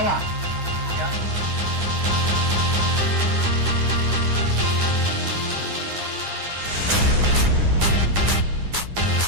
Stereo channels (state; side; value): late; left; 9.7 ms